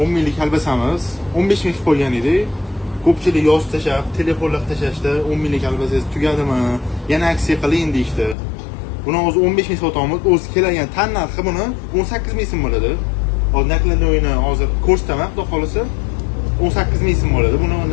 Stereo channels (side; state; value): right; drops out; at 8.3 s